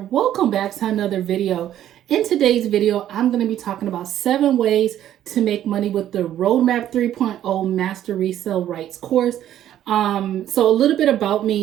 back to another video. In today's video, I'm going to be talking about 7 ways to make money with the Roadmap 3.0 Master Resell Rights course. So a little bit about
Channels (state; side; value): quieter; left; 11.6 dB